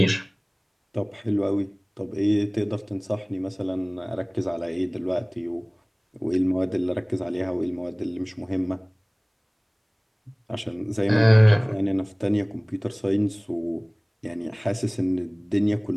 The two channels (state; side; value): identical; both; correlation 1.00